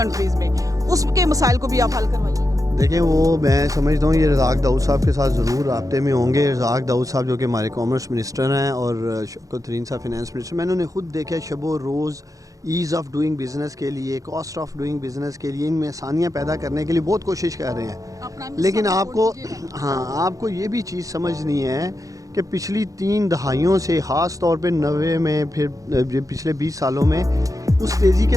में, उसके मसाइल को भी आप हल करवाइएगा। देखें, वो मैं समझता हूँ ये रज़ाक दाऊद साहब के साथ ज़रूर राब्ते में होंगे। रज़ाक दाऊद साहब जो कि हमारे कॉमर्स मिनिस्टर हैं और शौकत तरीन साहब फिनेंस मिनिस्टर, मैंने उन्हें खुद देखा शबो रोज़ ईज़ ऑफ डूइंग बिज़नेस के लिए, कॉस्ट ऑफ डूइंग बिज़नेस के लिए, इनमें आसानियाँ पैदा करने के लिए बहुत कोशिश कर रहे हैं। लेकिन आपको ये भी चीज़ समझनी है कि पिछली 3 दहाइयों से, ख़ास तौर पे 90 में, फिर पिछले 20 सालों में उस तेज़ी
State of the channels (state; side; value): late; left; 0.17 ms